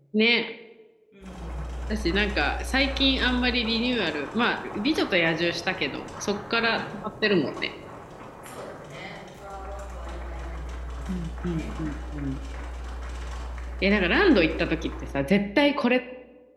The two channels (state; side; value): identical; both; correlation 1.00